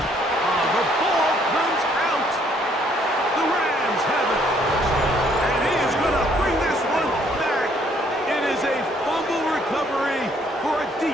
Oh, the ball comes out. The Rams have it. And he is going to bring this one back. It is a fumble recovery for a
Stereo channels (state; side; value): normal; both; correlation 0.65